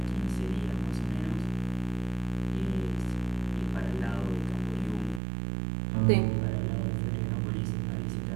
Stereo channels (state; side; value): drops out; left; at 5.2 s